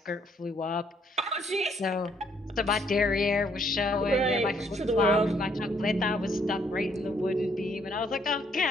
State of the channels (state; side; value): normal; both; correlation 0.68